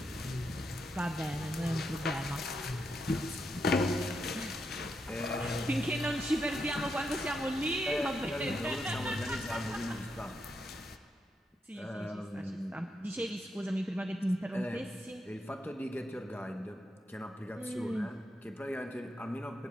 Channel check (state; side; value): normal; both; correlation 0.82